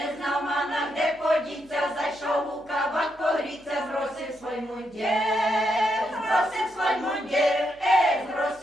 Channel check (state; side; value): noise; left; hum, 29 dB below the sound